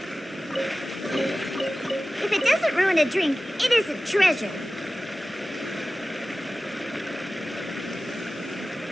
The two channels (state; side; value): normal; both; correlation 0.96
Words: If it doesn't ruin a drink, it is a treasure.